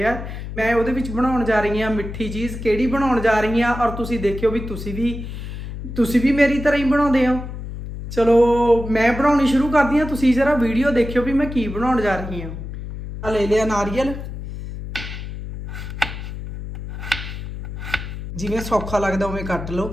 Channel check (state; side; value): noise; left; hum, 8 dB below the sound